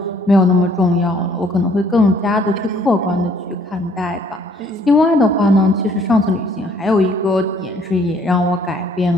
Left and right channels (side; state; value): both; normal; correlation 0.61